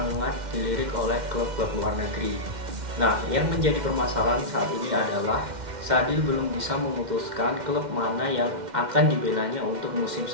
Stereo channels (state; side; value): late; left; 2.1 ms